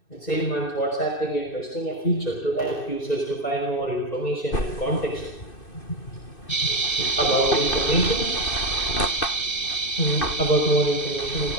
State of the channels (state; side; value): late; right; 2.6 ms